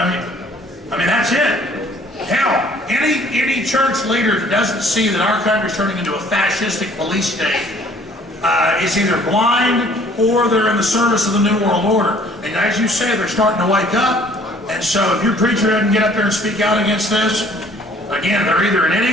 I mean, that's it. Hell, any church leader that doesn't see that our country's turning into a fascistic police state is either blind or they're in the service of the New World Order. And as you say, they're starting to wake up. And so if your preacher doesn't get up there and speak out against this, again, they're either an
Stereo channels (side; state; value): both; normal; correlation 0.57